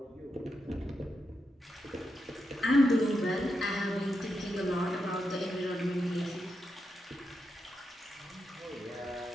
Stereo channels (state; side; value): normal; both; correlation 0.85